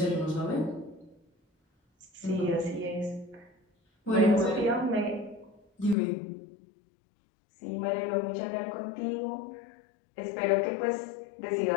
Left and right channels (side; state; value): right; drops out; at 6.0 s